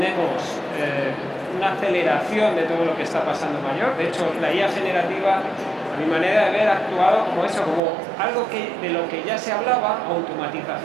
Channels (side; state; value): left; drops out; at 7.8 s